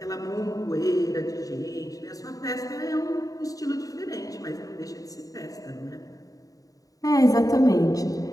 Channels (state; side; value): late; right; 0.17 ms